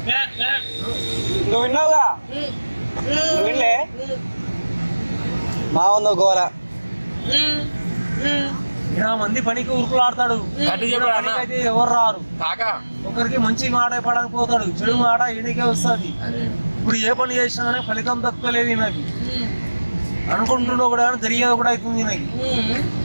నువ్వు విన్నావుగా? నువ్వు వినలే? మా ఉందో గోల. ఇలా మంది పనికి ఉరుకులు ఆడతాడు, పనికి అయితే ఎవరు రారు. ఒకరికి మంచి మాట చెప్పడానికి పోతాడు, చెడు మాట ఈయనకే వస్తుంది. ఇప్పుడు ఏ పని చేసినా కానీ ఫలితం దక్కలేదు నాకు. అనుకుంటున్నావు కూడా జరిగేది కూడా అవుతుంది నాకు.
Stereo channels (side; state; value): both; inverted; correlation -1.00